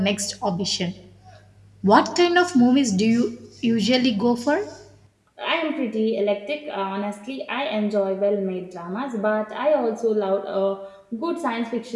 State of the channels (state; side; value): identical; both; correlation 1.00